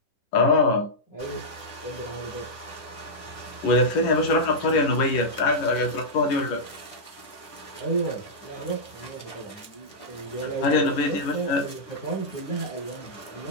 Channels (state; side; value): late; right; 10 ms